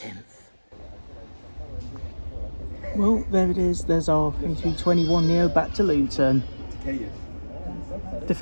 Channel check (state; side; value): inverted; both; correlation -1.00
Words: Well, there it is. There's our A321neo back to Luton.